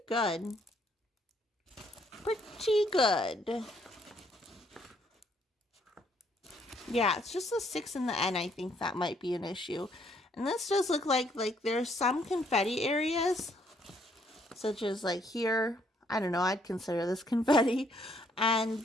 good. Pretty good. Yeah, it's just the 6 and the N, I think that might be an issue. And this does look like there's some confetti areas, such as like here. I don't know, I'd consider this confetti. And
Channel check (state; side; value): normal; both; correlation 0.68